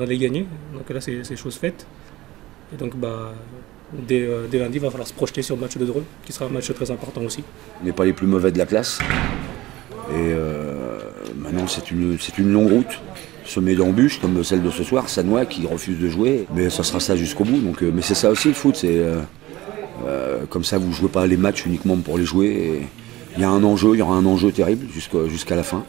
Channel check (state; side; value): quieter; left; 17.8 dB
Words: gagner. Donc là, c'est chose faite. Et donc, dès lundi, il va falloir se projeter sur le match de Dreux, qui sera un match très important aussi. On n'est pas les plus mauvais de la classe. Et maintenant, c'est une longue route, semée d'embûches, comme celle de ce soir, Sannois qui refuse de jouer. Mais ça sera ça jusqu'au bout. Donc, mais c'est ça aussi le foot. Comme ça, vous ne jouez pas les matchs uniquement pour les jouer. Et il y a un enjeu, il y aura un enjeu terrible jusqu'à la fin.